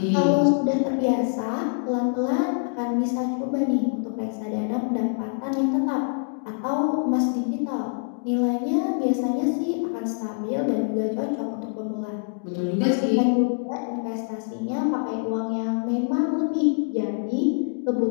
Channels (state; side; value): silent; right; 62 dB below the other